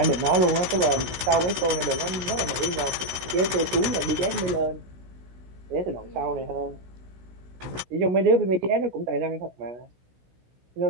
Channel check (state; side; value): late; left; 16 ms